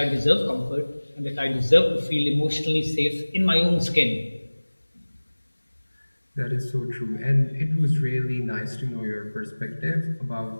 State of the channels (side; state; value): both; inverted; correlation -1.00